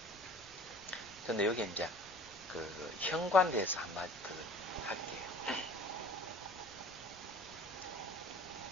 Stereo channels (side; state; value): left; noise; rumble, 25 dB below the sound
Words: 근데 여기 이제 그 현관대에서 한마디 더 할게요.